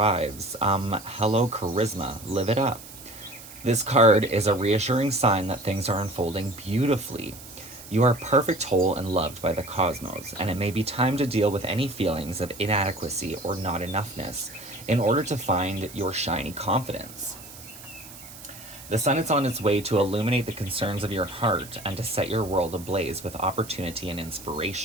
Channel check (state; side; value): noise; right; hiss, 16 dB below the sound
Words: charisma. Live it up. This card is a reassuring sign that things are unfolding beautifully. You are perfect, whole, and loved by the cosmos, and it may be time to deal with any feelings of inadequacy or not enoughness in order to find your shiny confidence. The sun is on its way to illuminate the concerns of your heart and to set your world ablaze with opportunity and